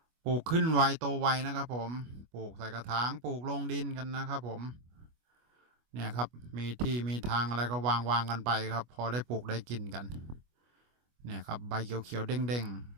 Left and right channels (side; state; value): left; late; 25 ms